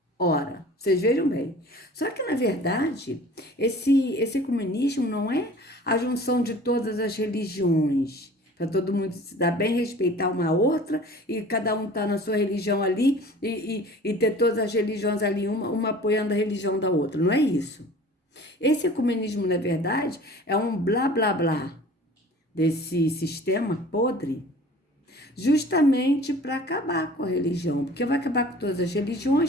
Ora, vocês vejam bem. Só que, na verdade, esse ecumenismo não é a junção de todas as religiões, para todo mundo se dar bem, respeitar uma outra, e cada um tá na sua religião ali, e ter todas as religiões ali, uma apoiando a religião da outra. Não é isso. Esse ecumenismo, na verdade, é um blá, blá, blá desse sistema podre, justamente para acabar com a religião, porque vai acabar com todas as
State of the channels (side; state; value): both; normal; correlation 0.45